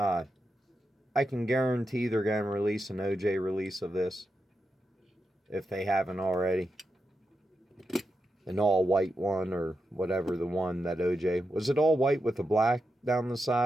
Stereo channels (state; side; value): normal; both; correlation 0.87